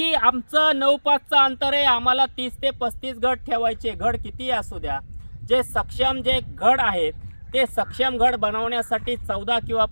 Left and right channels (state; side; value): inverted; both; correlation -1.00